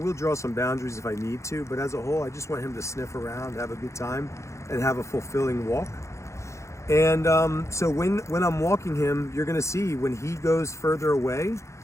draw some boundaries if I need to, but as a whole, I just want him to sniff around, have a good time, and have a fulfilling walk. And so when I'm walking him, you're gonna see when he goes further away,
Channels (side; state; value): right; late; 0.14 ms